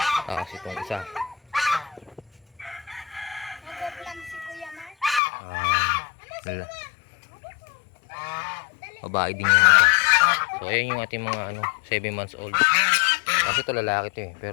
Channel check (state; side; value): drops out; right; at 5.2 s